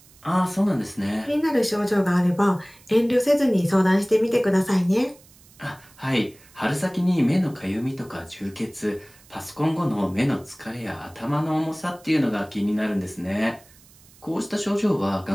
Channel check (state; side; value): noise; right; hiss, 26 dB below the sound